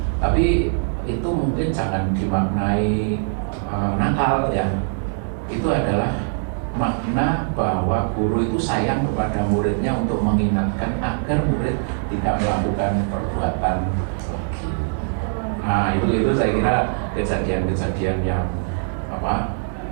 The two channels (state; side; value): silent; left; digital silence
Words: Tapi itu mungkin jangan dimaknai nakal ya. Itu adalah makna bahwa guru itu sayang kepada muridnya untuk mengingatkan agar murid tidak melakukan perbuatan lagi. Nah itu saya kira kejadian-kejadian yang